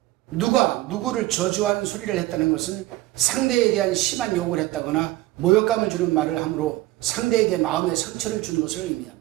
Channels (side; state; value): left; quieter; 17.6 dB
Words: 누가 누구를 저주하는 소리를 했다는 것은 상대에 대한 심한 욕을 했다거나 모욕감을 주는 말을 함으로 상대에게 마음의 상처를 준 것을